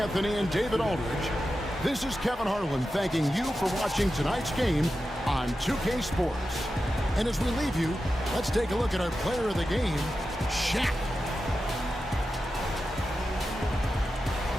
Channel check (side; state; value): both; normal; correlation 0.91